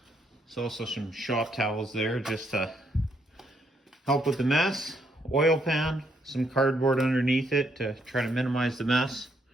There's also some shop towels there just to help with the mess. Oil pan, some cardboard underneath it to try to minimize the mess.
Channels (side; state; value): both; normal; correlation 0.74